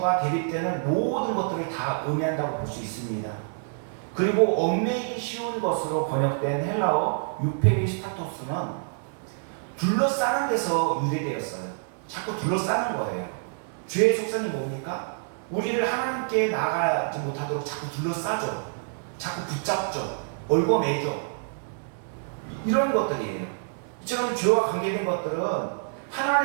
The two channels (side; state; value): left; silent; digital silence